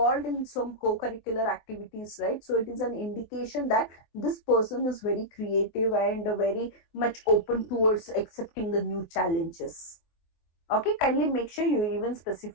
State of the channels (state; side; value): late; right; 24 ms